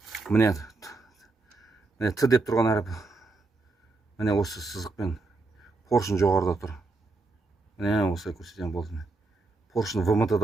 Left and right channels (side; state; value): left; quieter; 3.5 dB